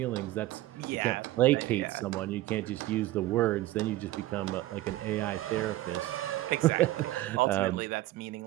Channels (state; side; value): quieter; left; 16.3 dB